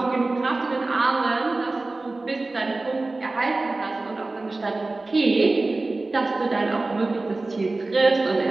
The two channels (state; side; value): quieter; left; 3.2 dB